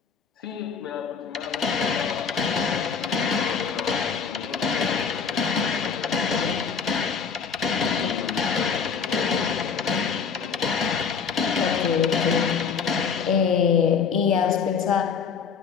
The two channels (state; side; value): quieter; right; 6.1 dB